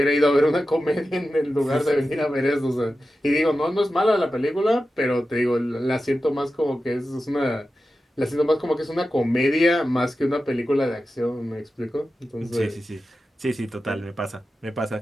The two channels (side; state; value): both; normal; correlation 0.93